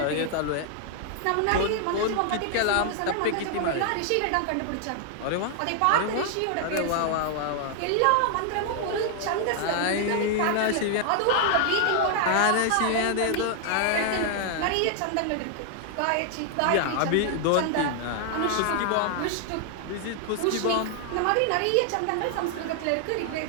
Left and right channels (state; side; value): different; both; correlation 0.00